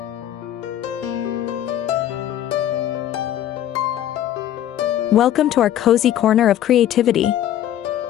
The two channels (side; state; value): right; quieter; 11.7 dB